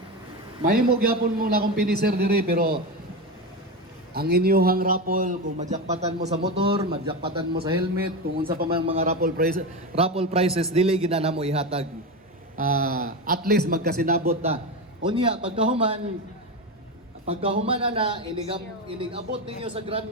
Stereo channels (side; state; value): both; normal; correlation 0.18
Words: Mahimog yapon mo na kung finisher diri, pero ang inyuhang raffle, kung madjakpatan mo sa motor, madjakpatan mo sa helmet, kung unsa pa man mga raffle prices, dili ginana mo ihatag. At least magkasinabot na. Unya, pagkahuman na inigabot ninyo sa Grand